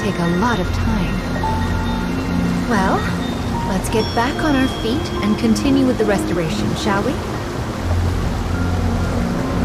a lot of time. Well, let's get back on our feet and continue with the restoration, shall we?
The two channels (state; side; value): identical; both; correlation 1.00